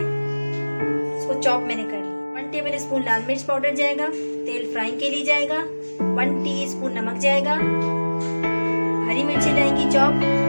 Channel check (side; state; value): both; inverted; correlation -1.00